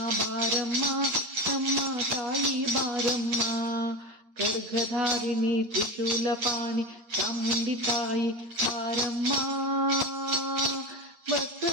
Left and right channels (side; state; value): left; late; 8.5 ms